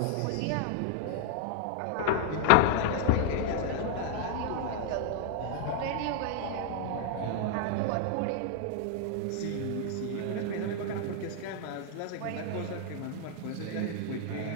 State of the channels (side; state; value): both; different; correlation 0.00